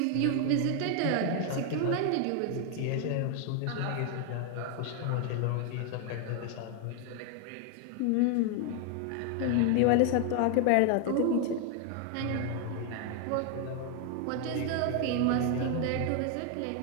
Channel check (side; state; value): both; different; correlation 0.00